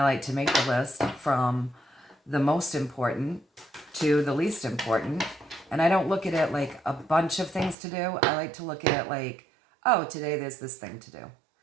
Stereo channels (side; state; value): left; drops out; at 7.8 s